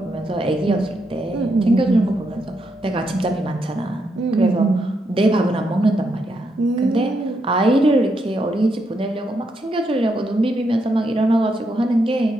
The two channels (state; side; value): normal; both; correlation 0.80